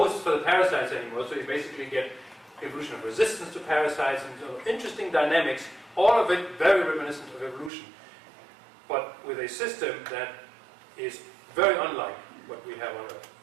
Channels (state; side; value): drops out; left; at 7.7 s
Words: for the parasites anymore. So you basically get evolution of resistance to parasites and interesting dynamics, all of it very reminiscent of evolution, but with a system that is very unlike what we have on Earth.